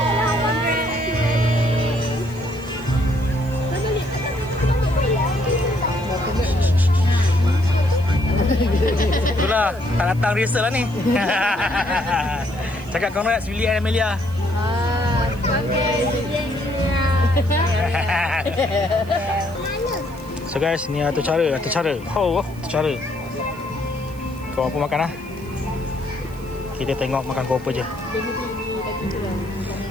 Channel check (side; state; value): right; noise; hiss, 25 dB below the sound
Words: Itulah, tak datang rehearsal lah ni. Cakap congrats Willy and Emilia. So guys, ni atur cara. Atur cara. Kau apa makan lah? Kita tengok makan kau apa je.